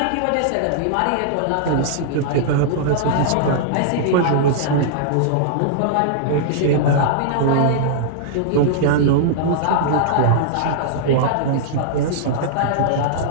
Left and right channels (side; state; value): both; different; correlation -0.02